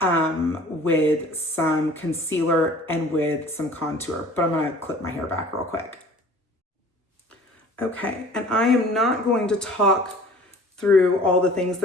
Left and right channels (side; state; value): both; normal; correlation 0.48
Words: with some concealer and with some contour, but I'm gonna clip my hair back real quick. Okay, and I am not going to talk through all the things